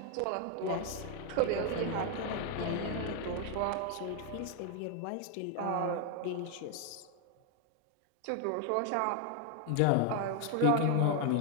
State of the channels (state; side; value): different; both; correlation 0.01